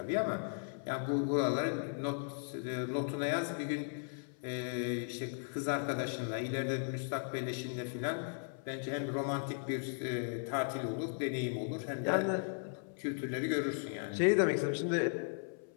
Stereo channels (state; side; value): silent; right; 53 dB below the other